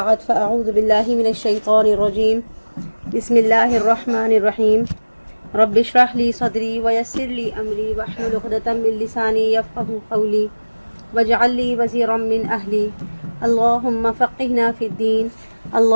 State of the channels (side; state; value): both; inverted; correlation -1.00